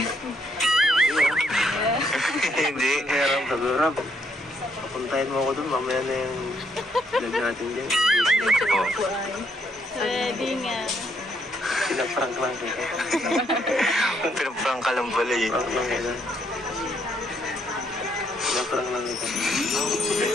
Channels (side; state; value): both; normal; correlation 0.72